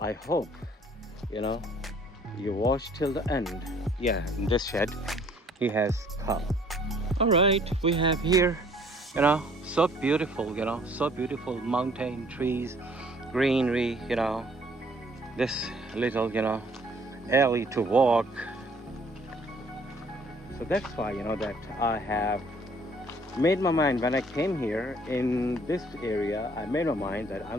hope you watch till the end. Yeah, in this shed he has cow. All right, we have here So beautiful, you know, so beautiful. Mountain, trees, greenery, you know. This little, you know, alley to walk. So that's why, you know, that I have made my mind when I came here in this area. I made my mind that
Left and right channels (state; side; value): normal; both; correlation 0.59